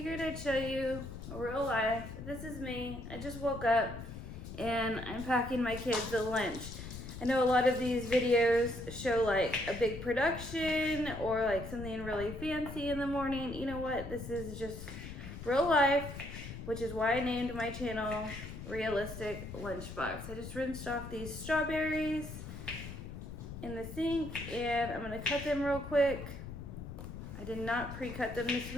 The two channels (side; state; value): left; noise; rumble, 10 dB below the sound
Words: I'd show you a real life. This is me. I just woke up and I'm packing my kids a lunch. I know a lot of these videos show like a big production or like something really fancy in the morning. You know what? This is just real life, which is why I named my channel Realistic Lunchbox. I just rinsed off these strawberries in the sink and I'm gonna cut them real quick. I did not pre-cut them this